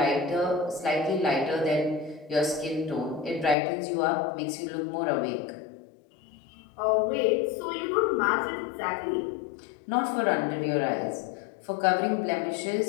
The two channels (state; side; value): drops out; right; at 3.6 s